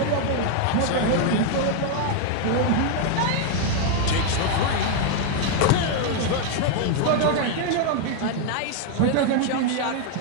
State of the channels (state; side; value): different; both; correlation 0.00